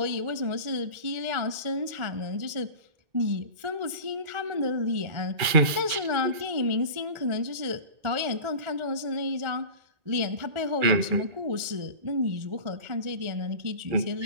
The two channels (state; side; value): late; left; 2.4 ms